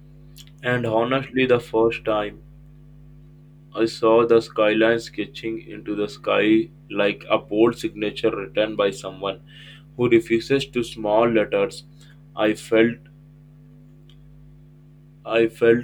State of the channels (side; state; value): both; identical; correlation 1.00